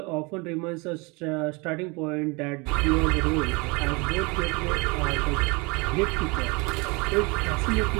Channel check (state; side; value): quieter; left; 28.0 dB